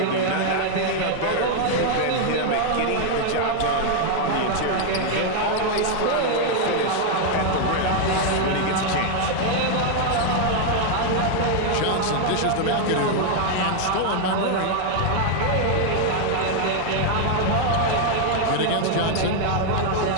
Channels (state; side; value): different; both; correlation 0.00